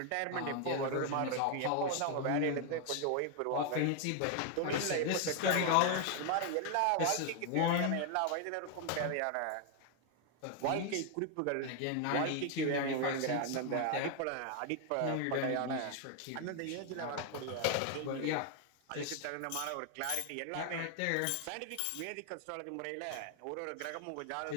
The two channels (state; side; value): different; both; correlation 0.00